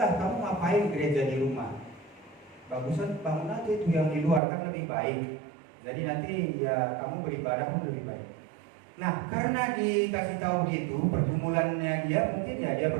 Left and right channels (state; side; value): drops out; left; at 4.4 s